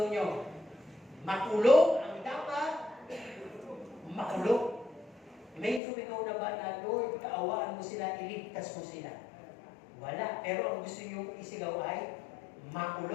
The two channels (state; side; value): drops out; right; at 5.8 s